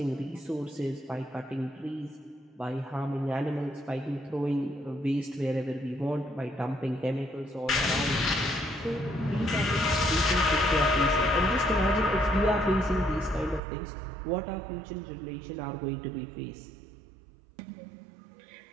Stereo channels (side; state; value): left; drops out; at 13.6 s